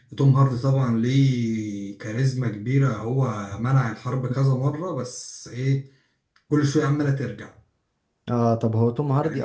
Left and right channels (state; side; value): identical; both; correlation 1.00